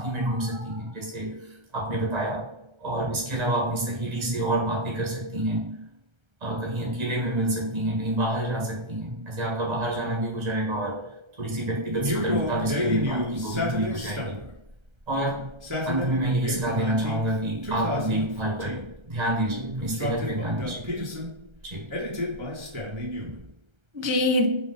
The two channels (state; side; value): late; left; 1.3 ms